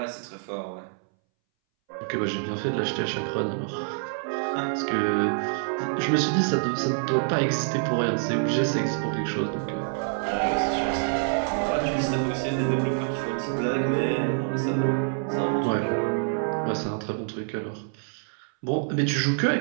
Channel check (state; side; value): silent; left; 61 dB below the other